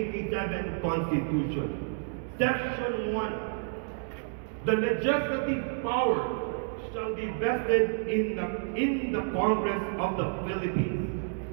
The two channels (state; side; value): silent; left; digital silence